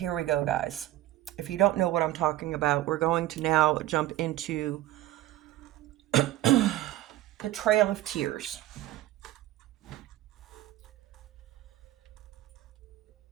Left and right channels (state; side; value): quieter; left; 15.0 dB